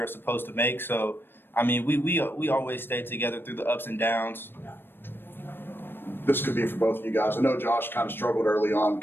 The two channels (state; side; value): late; right; 0.099 ms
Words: supposed to make. So, I mean we always stay together through the ups and downs. This could be for both of you guys. I know Josh kind of struggled early on, a